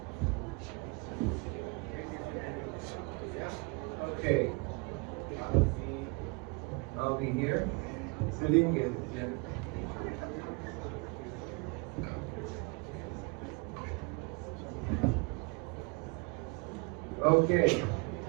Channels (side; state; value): left; quieter; 30.1 dB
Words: Okay. I'll be here. Sitting in. Okay.